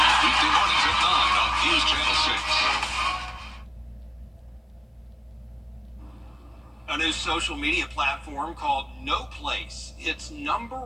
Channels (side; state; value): both; identical; correlation 1.00